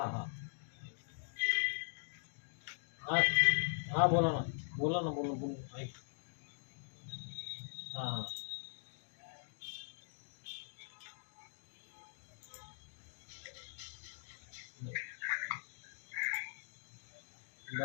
हां. हां हां बोला ना. बोला ना बोला बोला ऐक. हां हां.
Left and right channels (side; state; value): right; silent; digital silence